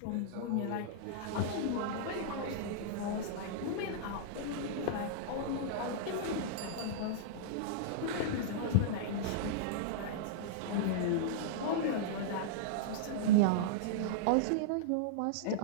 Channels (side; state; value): both; different; correlation -0.03